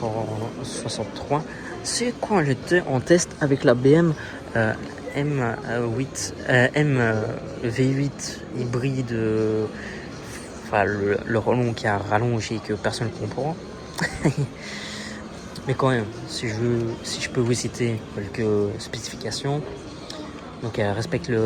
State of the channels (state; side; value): identical; both; correlation 1.00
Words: c'est quand j'étais en test avec la BM V8 hybride, le relon qui a rallongé que personne ne comprend. Mais quand même, si je peux vous citer quelques spécifications, donc elle respecte